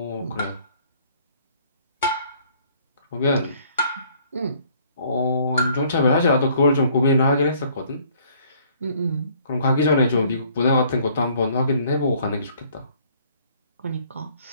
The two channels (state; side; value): inverted; both; correlation -0.60